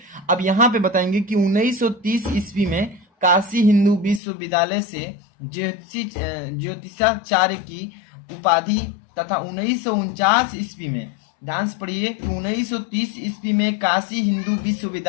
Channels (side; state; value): right; drops out; at 4.2 s